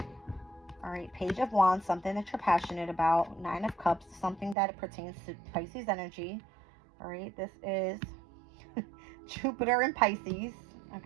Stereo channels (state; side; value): drops out; left; at 4.5 s